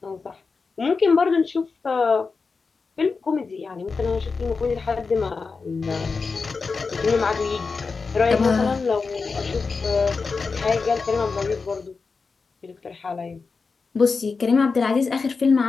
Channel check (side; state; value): right; quieter; 4.6 dB